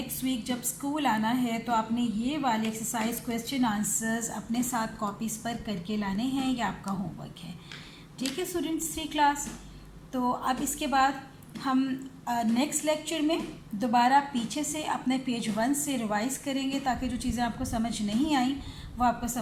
वीक जब स्कूल आना है तो आपने ये वाले एक्सरसाइज क्वेश्चन आंसर्स अपने साथ कॉपीज़ पर करके लाने हैं, ये आपका होमवर्क है। ठीक है स्टूडेंट्स, 3 क्लास। तो अब इसके बाद हम नेक्स्ट लेक्चर में दोबारा पीछे से अपने पेज 1 से रिवाइज़ करेंगे ताकि जो चीज़ें आपको समझ नहीं आई वो आपको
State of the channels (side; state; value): both; identical; correlation 1.00